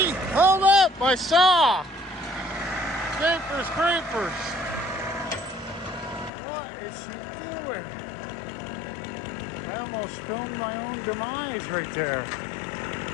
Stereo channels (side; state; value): right; drops out; at 6.3 s